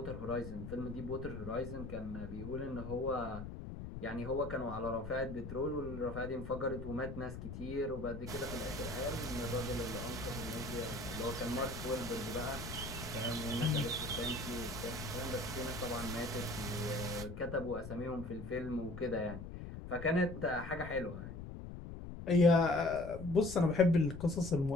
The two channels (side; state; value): left; noise; rumble, 9 dB below the sound